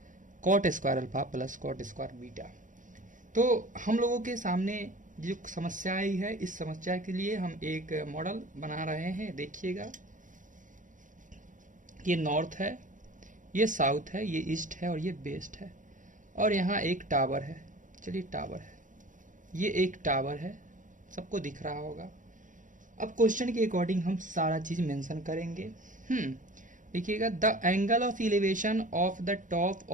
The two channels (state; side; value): late; left; 0.38 ms